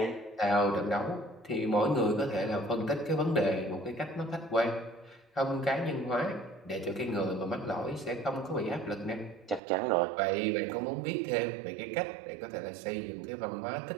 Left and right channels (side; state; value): left; drops out; at 9.6 s